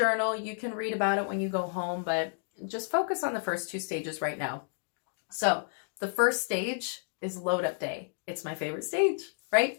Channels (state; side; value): silent; right; digital silence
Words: you can read about it when you go home, but just focus on the first 2 stages right now. So the first stage is load up day. It's my favorite stage, right?